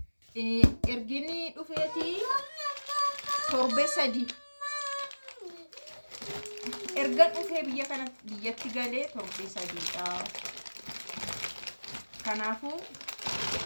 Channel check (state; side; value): inverted; both; correlation -1.00